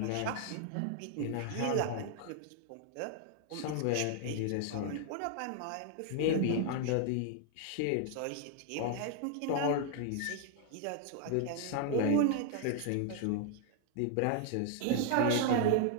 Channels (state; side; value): different; both; correlation 0.00